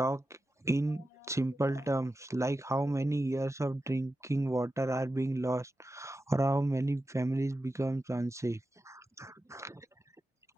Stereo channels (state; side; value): normal; both; correlation 0.91